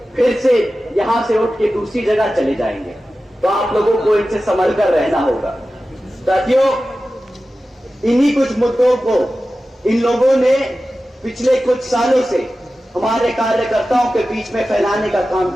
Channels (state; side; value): normal; both; correlation 0.94